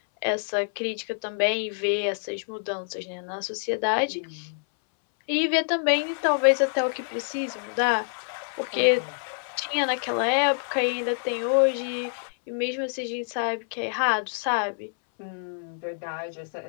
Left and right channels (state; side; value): silent; right; 60 dB below the other